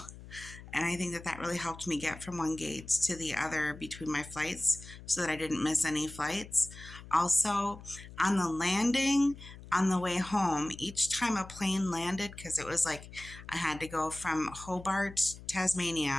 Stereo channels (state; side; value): noise; left; hum, 16 dB below the sound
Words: And I think that that really helped me get from one gate to the other between my flights so that I didn't miss any flights. Also, on the landing, on the way home, each time a plane landed, because it was like I had to go from Hobart,